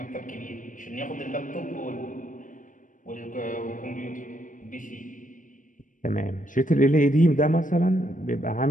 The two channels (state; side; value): late; right; 0.38 ms